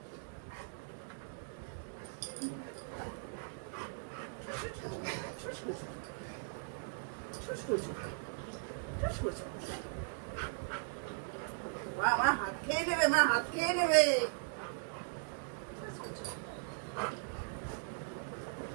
আমার হাত খেয়ে নেবে, মা হাত খেয়ে নেবে।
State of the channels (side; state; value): left; silent; digital silence